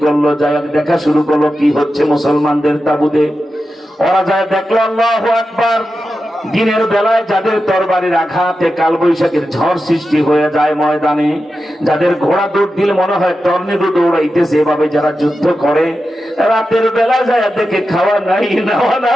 করলো, যাই দেখা শুরু করলো কি হচ্ছে মুসলমানদের তাবুতে। ওরা যায় দেখলো, আল্লাহু আকবার, দিনের বেলায় যাদের তরবারির আঘাতে কালবৈশাখীর ঝড় সৃষ্টি হয়ে যায় ময়দানে, যাদের ঘোড়া দৌড় দিলে মনে হয় টর্নেডো দৌড়াইতেছে, এভাবে যারা যুদ্ধ করে, রাতের বেলা যায় দেখে খাওয়া নাই, নেওয়া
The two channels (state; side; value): normal; both; correlation 0.91